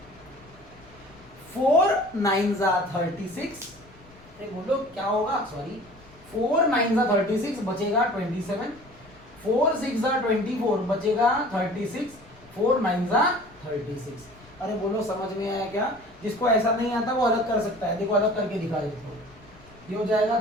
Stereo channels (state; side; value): noise; left; rumble, 25 dB below the sound